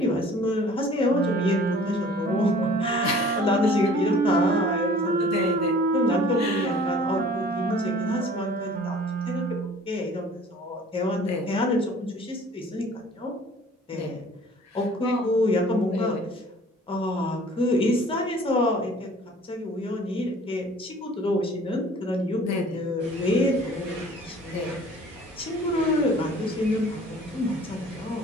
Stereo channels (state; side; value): normal; both; correlation 0.50